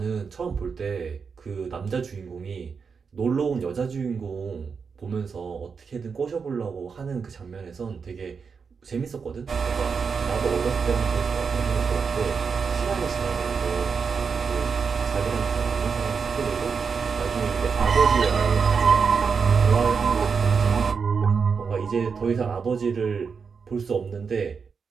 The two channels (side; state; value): left; quieter; 5.7 dB